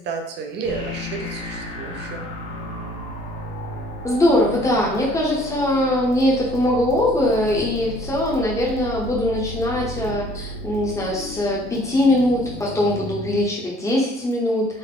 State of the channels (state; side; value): normal; both; correlation 0.57